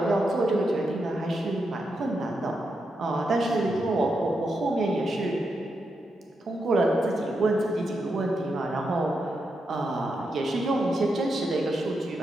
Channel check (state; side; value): normal; both; correlation 0.85